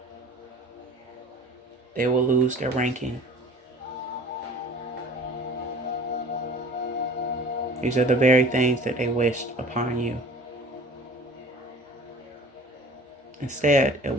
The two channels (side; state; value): both; normal; correlation 0.43